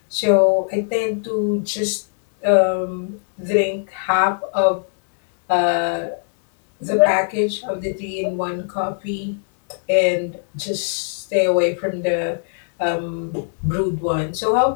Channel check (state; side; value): silent; right; 65 dB below the other